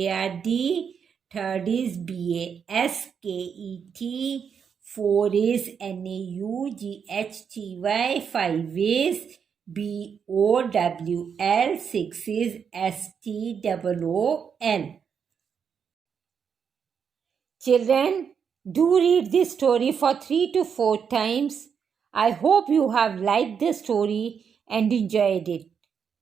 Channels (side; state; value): left; quieter; 7.0 dB